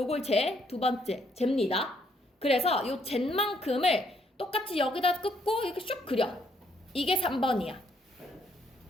두 번째 잽니다. 그래서 요 잰 만큼을 똑같이 여기다 긋고 이렇게 슉 그려. 이게 3번이야.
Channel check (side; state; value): both; normal; correlation 0.70